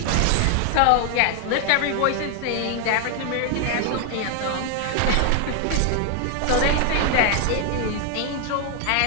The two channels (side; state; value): both; different; correlation 0.00